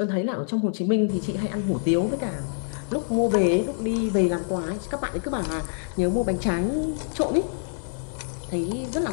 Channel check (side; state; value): right; silent; digital silence